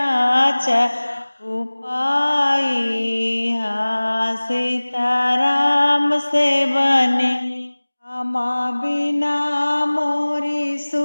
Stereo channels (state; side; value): inverted; both; correlation -1.00